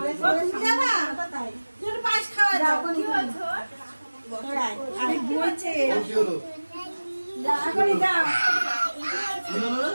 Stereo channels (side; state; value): both; inverted; correlation -1.00